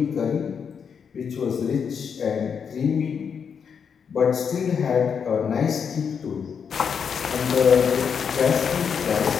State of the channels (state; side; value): quieter; right; 6.8 dB